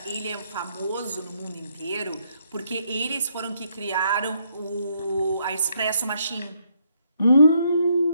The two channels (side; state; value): both; inverted; correlation -0.73